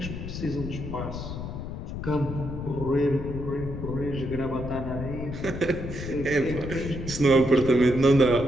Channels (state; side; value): noise; left; rumble, 7 dB below the sound